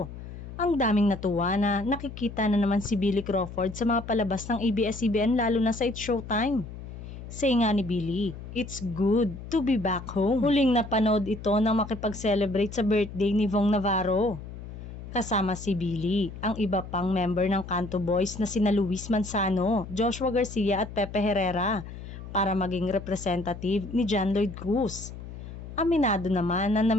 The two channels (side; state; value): left; noise; hum, 12 dB below the sound